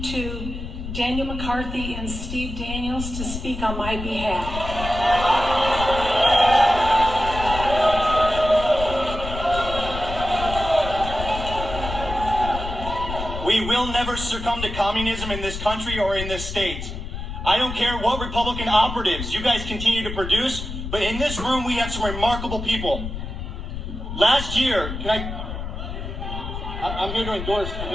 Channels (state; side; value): noise; left; rumble, 7 dB below the sound